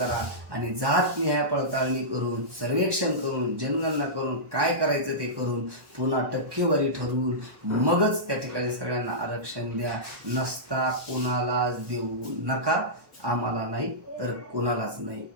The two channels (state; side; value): late; left; 1.1 ms